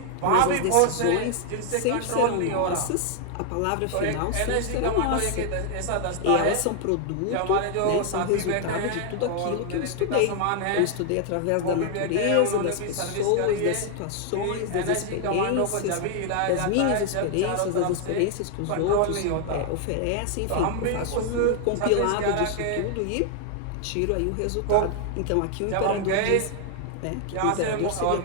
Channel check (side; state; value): both; different; correlation 0.00